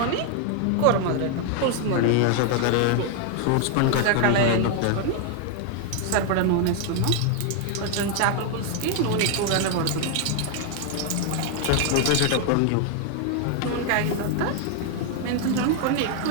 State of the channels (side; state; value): both; different; correlation 0.00